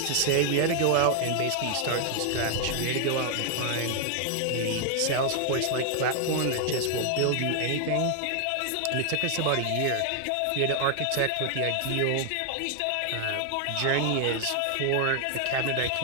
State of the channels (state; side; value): different; both; correlation 0.00